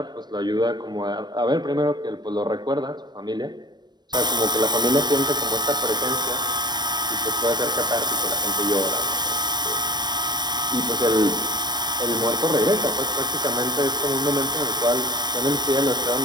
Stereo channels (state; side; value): late; left; 0.21 ms